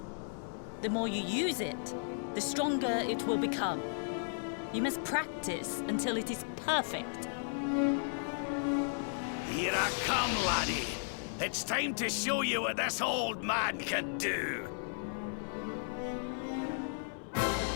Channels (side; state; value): right; silent; 55 dB below the other